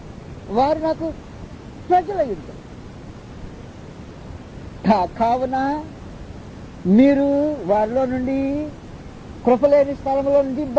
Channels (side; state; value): both; identical; correlation 1.00